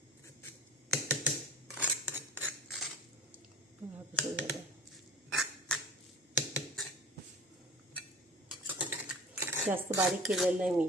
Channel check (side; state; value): both; normal; correlation 0.41